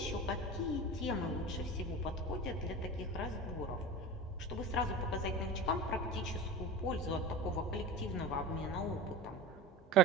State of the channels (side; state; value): both; normal; correlation 0.30